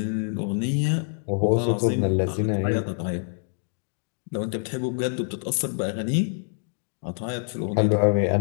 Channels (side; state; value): right; silent; 59 dB below the other